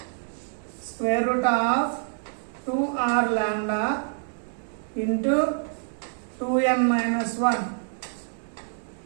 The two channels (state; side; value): silent; left; 60 dB below the other